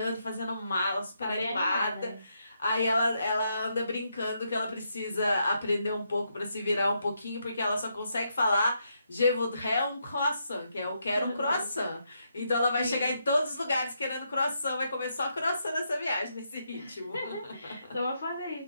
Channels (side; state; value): both; inverted; correlation -0.79